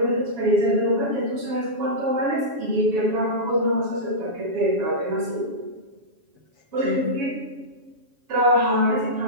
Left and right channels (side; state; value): left; late; 7.2 ms